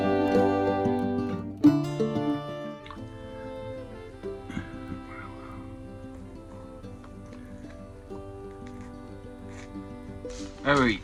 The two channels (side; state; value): both; identical; correlation 1.00